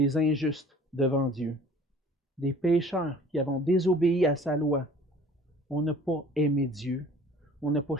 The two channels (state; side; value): normal; both; correlation 0.49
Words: injustes devant Dieu, des pécheurs qui avons désobéi à sa loi. On n'a pas aimé Dieu, on n'a pas